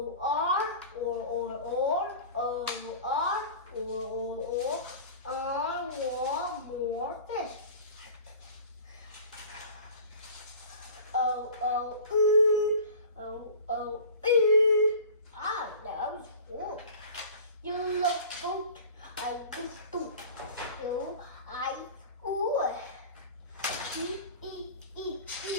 R or O R or I want more fish. Ah, that was cool. You look good. I could do. You, I, ooh.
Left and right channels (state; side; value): inverted; both; correlation -0.39